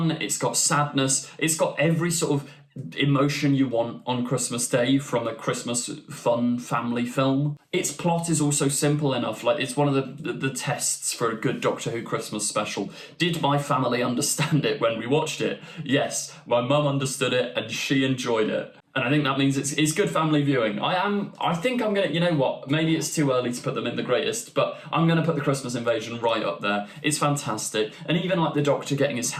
it's got sadness, it's got every sort of emotion you want on Christmas Day from a Christmas fun family film. Its plot is also simple enough, like it's one of the tests for a good Doctor Who Christmas special. Did my family understand it when we watched it? Yes, my mum understood it and she enjoyed it. And I think that means it's good family viewing. I think I'm gonna, you know what, maybe it's too early to put them in the greatest, but I'm gonna put The Christmas Invasion right up there. It's fantastic. And even like the Doctor getting his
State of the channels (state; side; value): identical; both; correlation 1.00